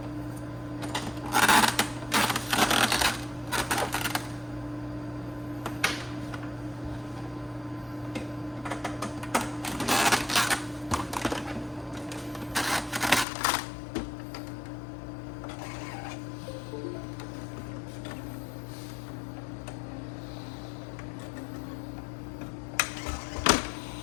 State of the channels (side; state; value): right; drops out; at 13.2 s